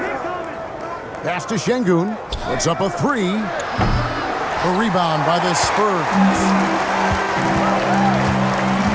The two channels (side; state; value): both; identical; correlation 1.00